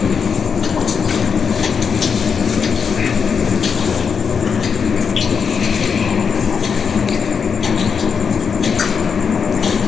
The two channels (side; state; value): right; quieter; 6.3 dB